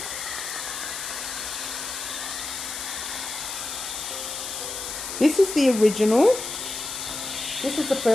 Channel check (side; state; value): left; noise; hiss, 6 dB below the sound